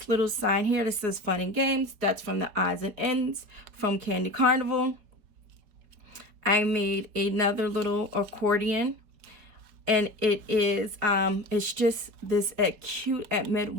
little sign here that says Fun and Games, that's from the odds and ends from Candy Carnival. I made another little accordion, and it is it's just this cute Admit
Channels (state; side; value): late; left; 4.5 ms